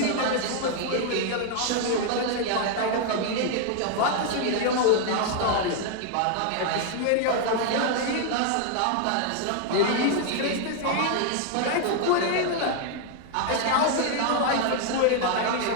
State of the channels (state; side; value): different; both; correlation 0.00